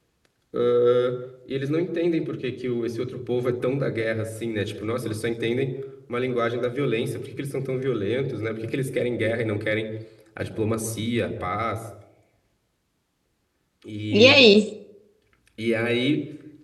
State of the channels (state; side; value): identical; both; correlation 1.00